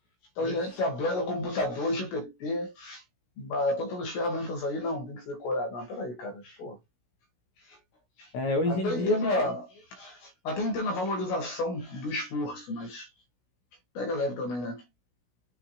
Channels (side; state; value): right; late; 16 ms